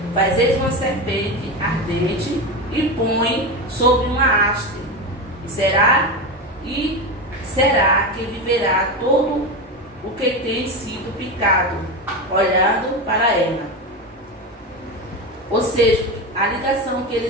fazeis uma serpente ardente e põe sobre uma haste, e será que viverá todo o que tem sido picado, olhando para ela. Ou seja, a ligação que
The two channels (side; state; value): both; normal; correlation 0.19